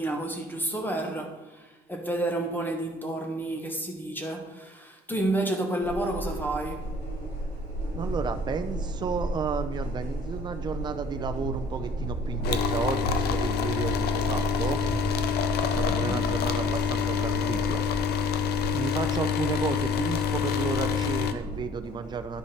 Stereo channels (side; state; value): both; normal; correlation 0.53